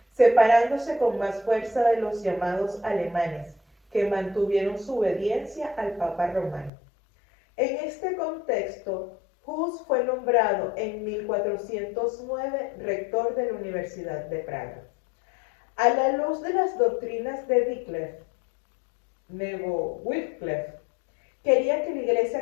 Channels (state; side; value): drops out; right; at 6.7 s